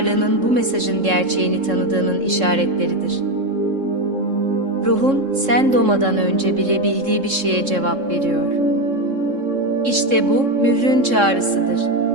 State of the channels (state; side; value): late; left; 3.7 ms